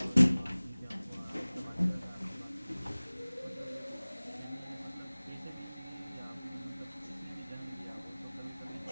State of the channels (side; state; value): both; inverted; correlation -0.99